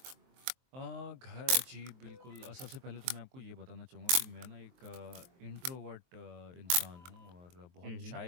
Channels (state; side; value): late; left; 23 ms